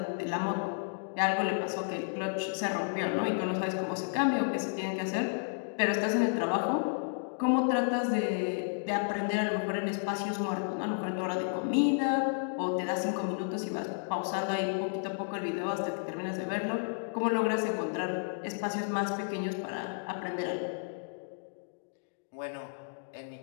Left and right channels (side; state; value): right; silent; digital silence